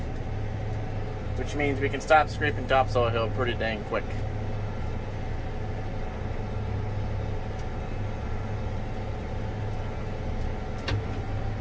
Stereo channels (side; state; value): both; identical; correlation 1.00